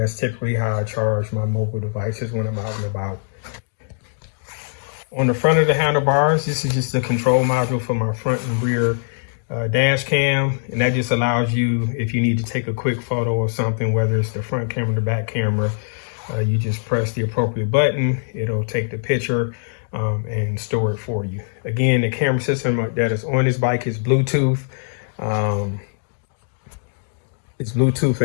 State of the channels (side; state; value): right; silent; digital silence